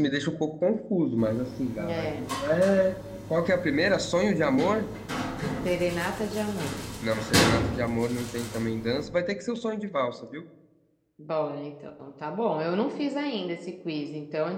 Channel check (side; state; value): both; identical; correlation 1.00